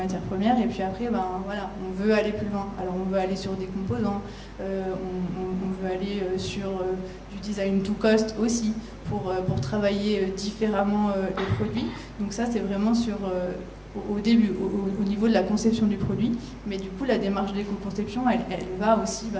premières et puis après on veut aller plus loin. Alors on veut aller sur des composants, on veut aller sur du design to cost aussi pour travailler différemment les produits. Donc ça c'est vraiment sur au début, au niveau de la conception du produit, mais du coup la démarche d'éco-conception, elle va aussi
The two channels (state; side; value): identical; both; correlation 1.00